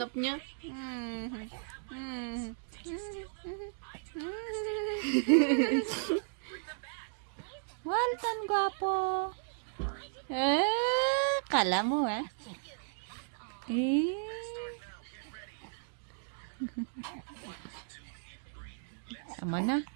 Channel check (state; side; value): silent; left; digital silence